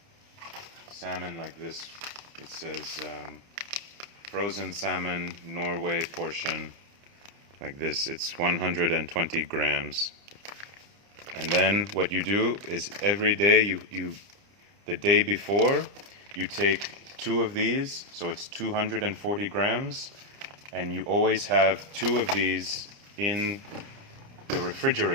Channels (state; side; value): late; left; 29 ms